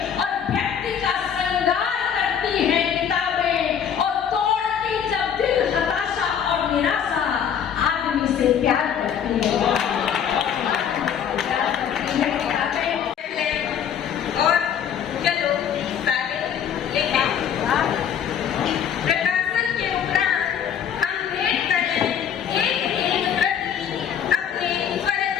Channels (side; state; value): right; quieter; 8.4 dB